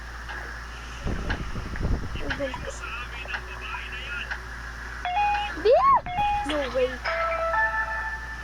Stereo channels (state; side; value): identical; both; correlation 1.00